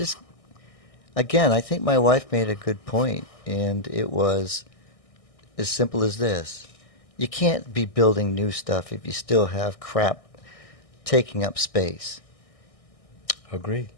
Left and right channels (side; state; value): right; late; 1.6 ms